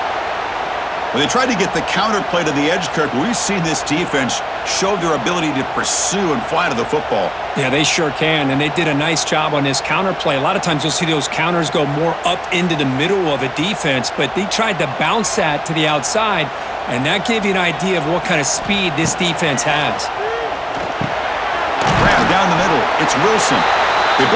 When they tried to get the counter play to the edge, Kirk, we've seen this defense show their ability to pursue and fly to the football. Yeah, they sure can, and they did a nice job on this counter play. A lot of times you'll see those counters go more up into the middle of a defense, but they tried to bounce that to the outside, and that gave you an idea of what kind of speed this defense has. Grab down the middle. It's Wilson. They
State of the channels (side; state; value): both; identical; correlation 1.00